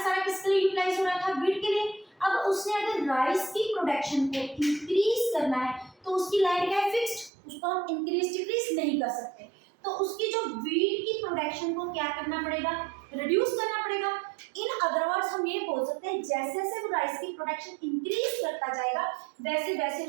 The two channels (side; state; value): left; drops out; at 7.3 s